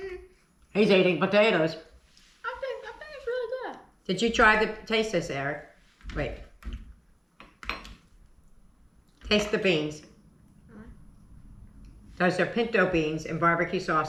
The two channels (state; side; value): identical; both; correlation 1.00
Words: he's eating potatoes. I think it's really good. Did you try the taste this, Eric? Wait. Taste the beans. Those are pinto beans and barbecue